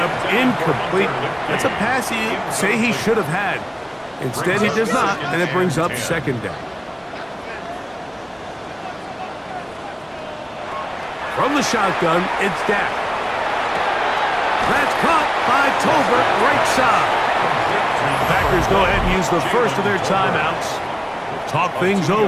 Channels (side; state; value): both; identical; correlation 1.00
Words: incomplete. That's a pass you say he should have had. Instead, he does not, and it brings up second down. From the shotgun, it's Dak. That's caught by Tolbert, right side. The Packers go ahead and use the first of their timeouts. Talk things